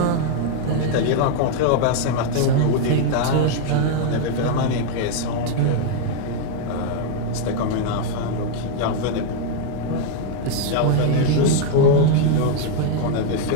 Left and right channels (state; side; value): different; both; correlation 0.00